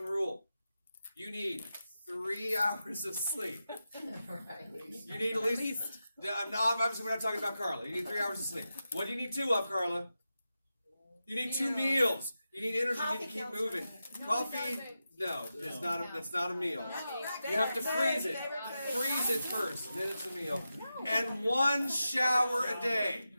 rule. You need 3 hours of sleep. You need at least... Obviously, we're not talking about Carla. You need 3 hours of sleep. What do you need 2 of, Carla? You need 2 meals. You need energy. You need to keep moving. Coffee, no, that's not a meal. You have to freeze it. Freeze it first, then it's a meal. And 1 shower a day.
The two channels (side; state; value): both; inverted; correlation -0.91